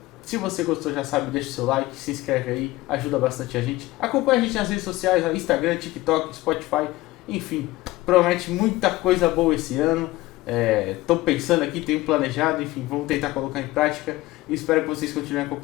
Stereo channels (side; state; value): right; quieter; 18.5 dB